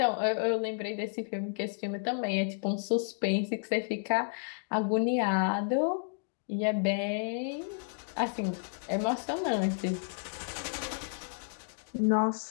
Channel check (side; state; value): right; silent; digital silence